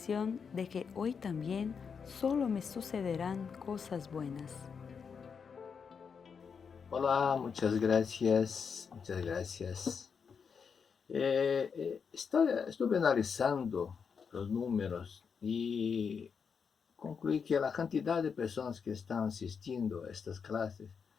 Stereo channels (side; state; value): right; quieter; 6.2 dB